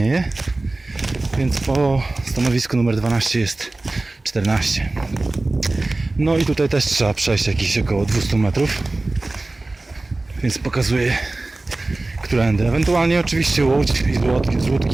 więc po stanowisku numer 12 jest 14. No i tutaj też trzeba przejść jakieś około 200 metrów, więc pokazuję, którędy. Ewentualnie oczywiście łódź i z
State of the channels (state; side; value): quieter; left; 3.1 dB